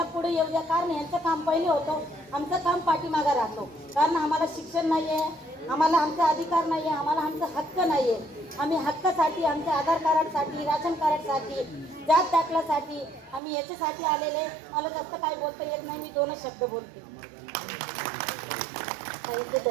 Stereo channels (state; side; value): drops out; left; at 13.4 s